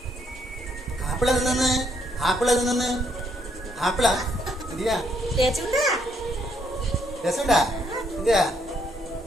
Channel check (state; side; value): normal; both; correlation 0.72